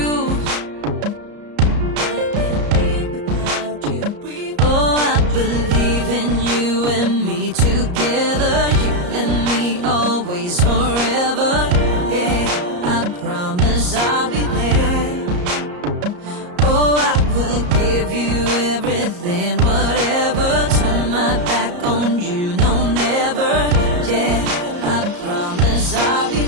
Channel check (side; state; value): left; late; 34 ms